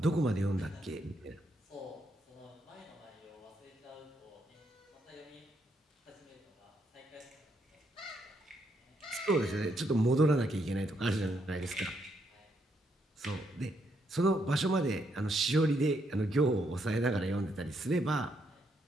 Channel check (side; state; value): both; normal; correlation 0.76